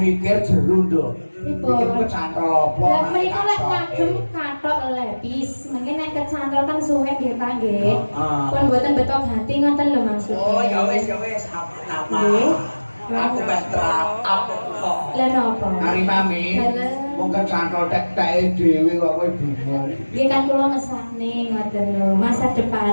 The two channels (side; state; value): both; inverted; correlation -1.00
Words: jeru nduk. Mikir kecantol apa? Lah mriko lek ngagem kathok lepis, mungkin nek kecantol kan suwe nggih ta nggih. Pun mboten betok hati ngoten lho maksudnya. Oh, ya wis, apa-apa. Aku betrap apa kok. Lah napa? Ari mami, wong kecantol tek-teke dhewe kok kowe bingung. Nggih kan kula mesane ngoten lho, masa